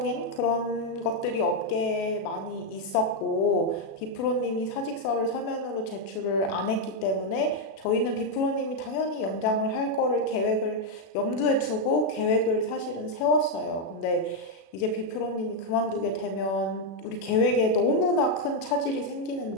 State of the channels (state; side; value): late; right; 37 ms